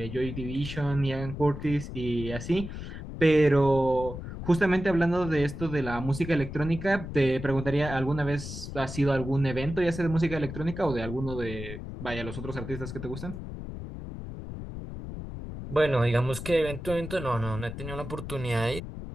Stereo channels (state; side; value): noise; left; rumble, 9 dB below the sound